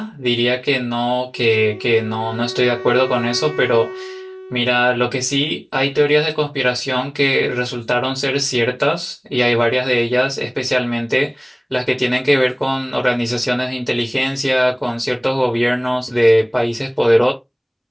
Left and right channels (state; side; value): identical; both; correlation 1.00